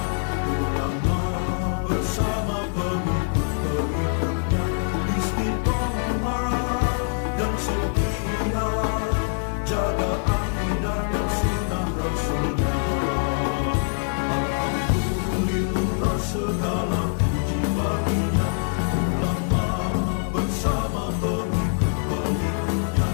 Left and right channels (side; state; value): right; silent; 62 dB below the other